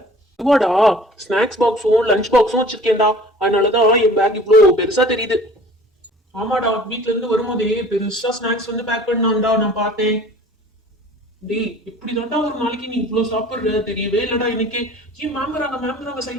இதுவாடா, ஸ்நாக்ஸ் பாக்ஸும் லஞ்ச் பாக்ஸும் வச்சிருக்கேன்டா, அதனாலதான் என் பேக் இவ்ளோ பெருசா தெரியுது. ஆமாடா, வீட்ல இருந்து வரும்போதே பெருசா ஸ்நாக்ஸ் வந்து பேக் பண்ணான்டா, நான் பார்த்தேன். டேய், இப்படிதான்டா ஒரு நாளைக்கு நீ இவ்ளோ சாப்பிடுற? தெரியவே இல்லடா எனக்கு. ஏன் மேம் வராங்க,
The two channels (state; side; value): normal; both; correlation 0.47